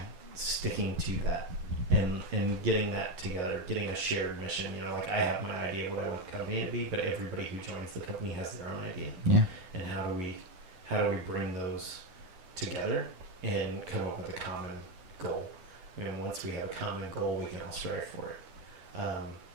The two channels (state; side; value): late; left; 11 ms